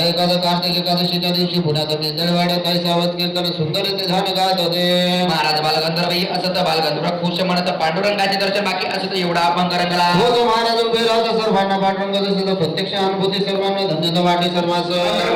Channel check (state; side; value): identical; both; correlation 1.00